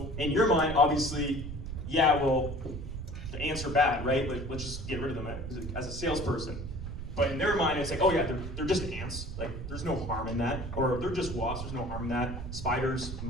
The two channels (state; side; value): noise; right; rumble, 7 dB below the sound